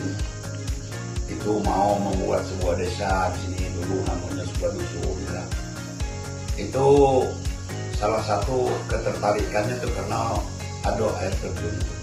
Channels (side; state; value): both; identical; correlation 1.00